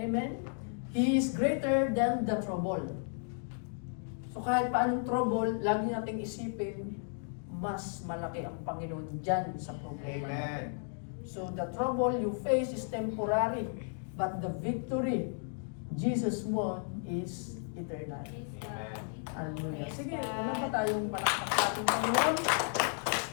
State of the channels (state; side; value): silent; right; 55 dB below the other